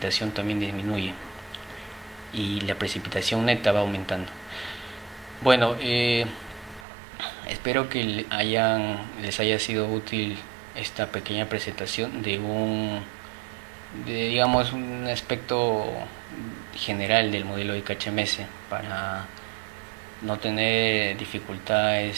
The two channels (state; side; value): drops out; left; at 6.9 s